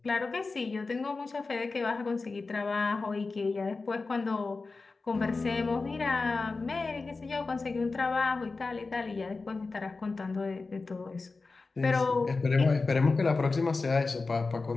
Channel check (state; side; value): quieter; right; 3.9 dB